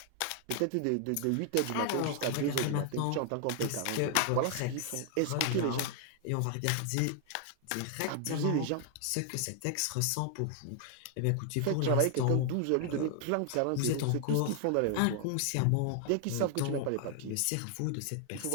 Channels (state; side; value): different; both; correlation 0.00